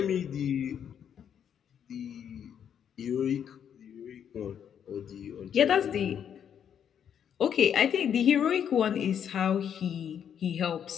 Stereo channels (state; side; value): quieter; right; 8.6 dB